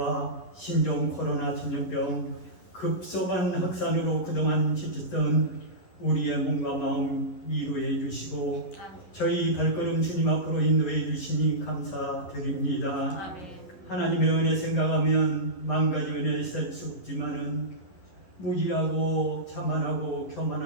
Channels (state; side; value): late; right; 11 ms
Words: 신종 코로나 전염병 급속한 확산으로 그동안 지쳤던 우리의 몸과 마음 위로해 주시고 저희 발걸음 주님 앞으로 인도해 주시니 감사드립니다. 하나님의 은혜 생각하면 만 가지 은혜 셀 수 없지만은 무지하고 자만하고